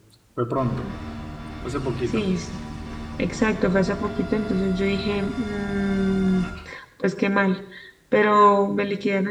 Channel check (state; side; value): identical; both; correlation 1.00